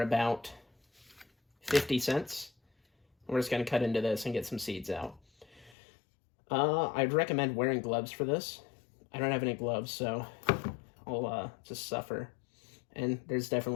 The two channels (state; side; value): drops out; right; at 5.8 s